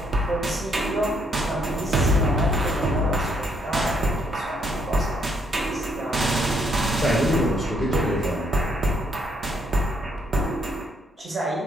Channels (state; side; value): normal; both; correlation 0.72